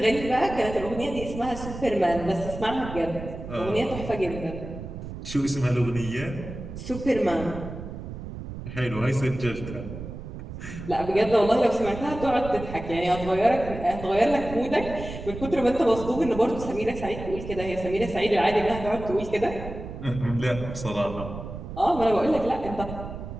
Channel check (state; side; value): noise; right; rumble, 10 dB below the sound